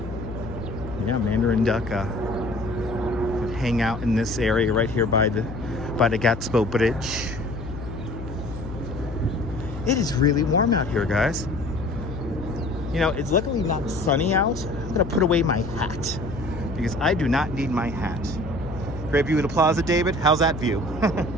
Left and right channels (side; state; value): left; noise; hum, 10 dB below the sound